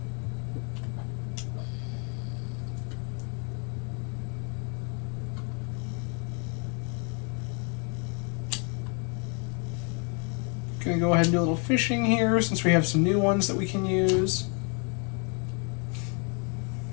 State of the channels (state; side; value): quieter; right; 36.6 dB